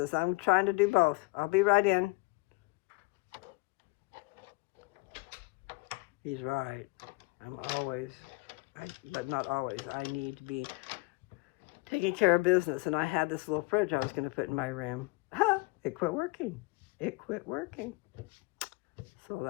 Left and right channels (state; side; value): quieter; right; 25.1 dB